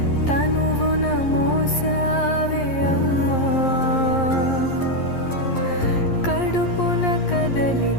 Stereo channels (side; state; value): right; late; 11 ms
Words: తనువున మోసావే అమ్మా. కడుపున